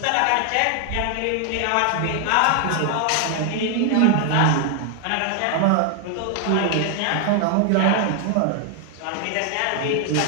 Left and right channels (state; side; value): different; both; correlation 0.00